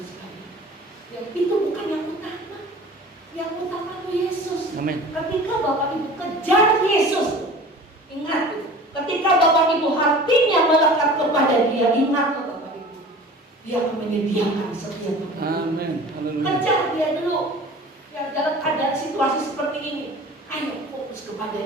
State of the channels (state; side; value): normal; both; correlation 0.41